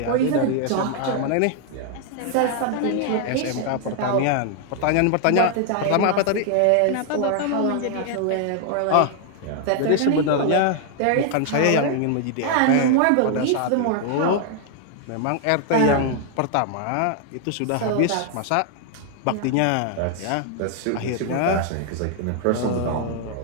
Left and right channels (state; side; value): different; both; correlation 0.00